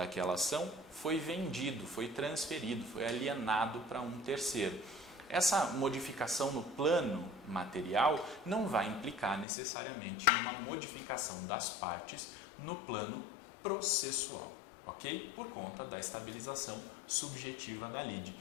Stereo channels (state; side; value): drops out; right; at 9.5 s